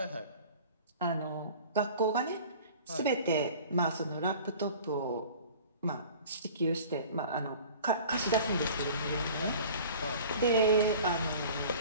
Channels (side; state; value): both; inverted; correlation -0.44